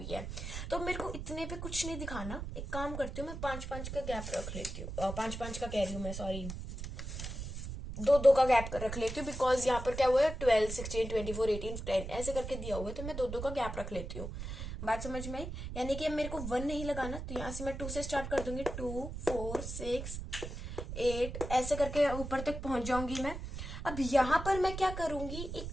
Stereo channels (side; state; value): right; noise; rumble, 7 dB below the sound